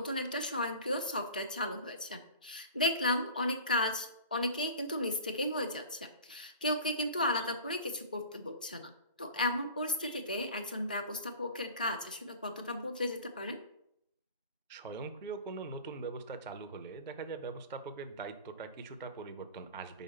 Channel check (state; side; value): inverted; both; correlation -0.40